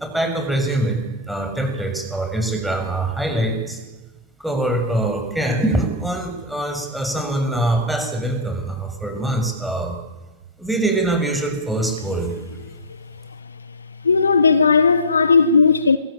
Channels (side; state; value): both; normal; correlation -0.14